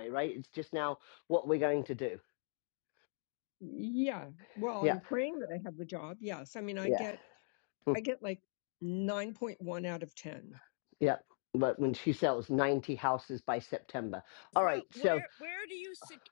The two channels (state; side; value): silent; right; 52 dB below the other